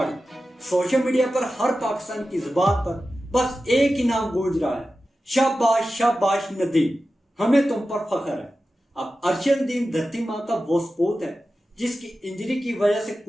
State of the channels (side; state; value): both; normal; correlation 0.93